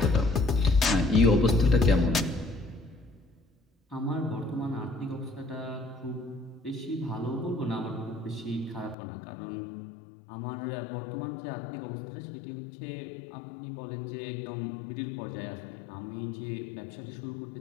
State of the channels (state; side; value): drops out; right; at 9.0 s